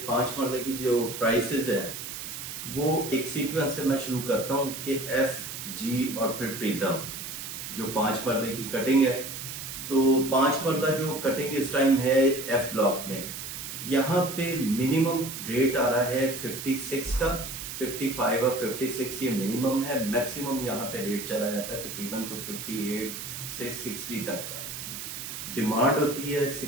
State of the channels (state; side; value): noise; right; hiss, 8 dB below the sound